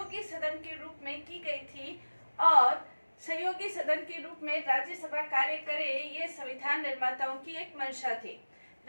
सदन के रूप में की गई थी और सहयोगी सदन के रूप में राज्यसभा कार्य करे, ये संविधान निर्माताओं की एक मंशा थी।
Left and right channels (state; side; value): inverted; both; correlation -1.00